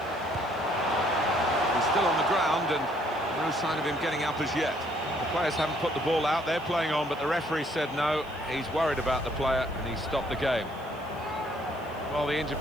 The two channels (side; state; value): left; noise; hiss, 27 dB below the sound